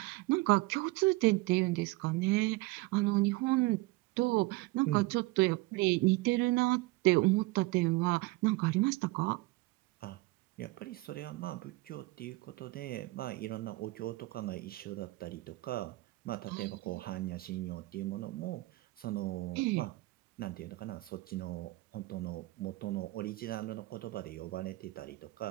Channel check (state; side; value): quieter; left; 21.5 dB